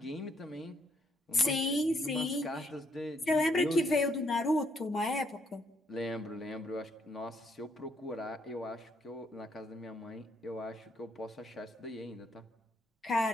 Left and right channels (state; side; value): normal; both; correlation 0.72